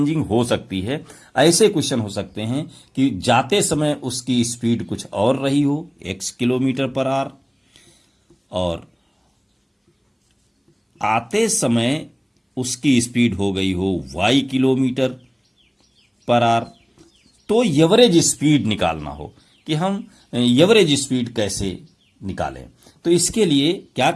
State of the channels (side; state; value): both; identical; correlation 1.00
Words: हो सकती है। ऐसे क्वेश्चन हो सकते हैं कि जाते समय उसकी स्पीड कुछ और रही हो, x किलोमीटर पर आवर, और आते समय उसकी स्पीड हो गई हो y किलोमीटर पर आवर। तो एवरेज स्पीड निकालना हो कि हम एवरेज स्पीड कैसे निकालें, तो इसके लिए क्या